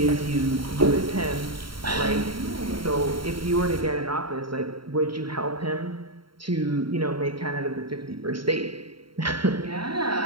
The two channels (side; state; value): left; late; 0.73 ms